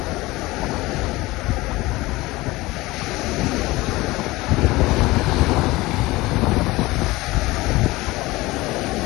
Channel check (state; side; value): quieter; right; 20.3 dB